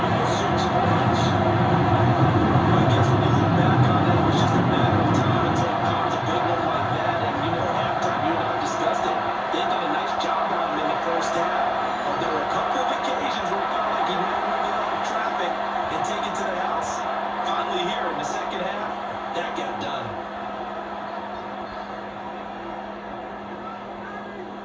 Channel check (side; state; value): both; identical; correlation 1.00